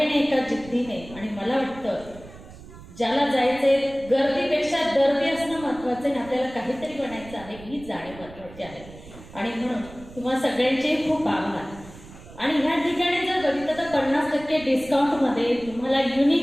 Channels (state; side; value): noise; right; rumble, 18 dB below the sound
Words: एका जिद्दीने. आणि मला वाटतं ज्याला जायचंय, गर्दीपेक्षा दर्दी असणं महत्त्वाचं आहे. आपल्याला काहीतरी बनायचं आहे, ही जाणीव महत्त्वाची आहे. आणि म्हणून तुम्हा सगळ्यांचे खूप आभार. आणि ह्या ठिकाणी जर बघितलं तर 50% डिस्काउंटमध्ये तुम्हाला